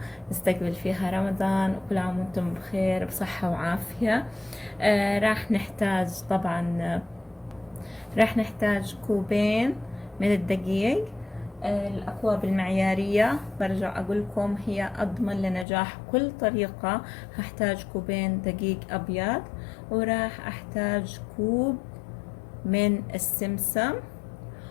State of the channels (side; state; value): right; drops out; at 15.7 s